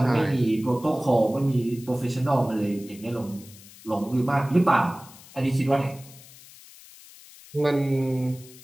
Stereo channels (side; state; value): left; noise; hiss, 21 dB below the sound